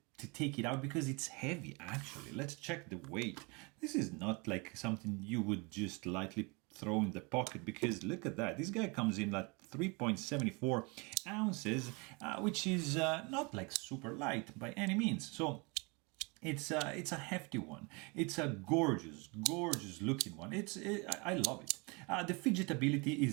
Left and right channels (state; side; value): quieter; left; 29.4 dB